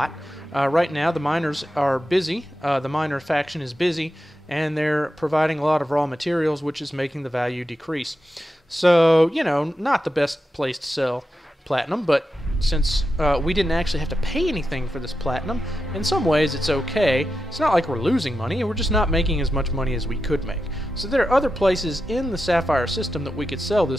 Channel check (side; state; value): both; normal; correlation 0.89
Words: Right now, the miners are busy. The miner faction is busy, and they're providing a lot of raw materials, which is making the value decrease. So, not the best place to sell platinum, but since we didn't actually have to pay anything for this platinum, in some ways it's okay. It's not like we're losing money, we're just not making as much money as we could make. So there are other places in the Sapphire system that we could sell this